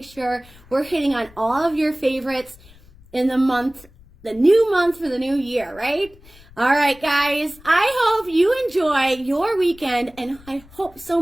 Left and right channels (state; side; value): noise; left; rumble, 24 dB below the sound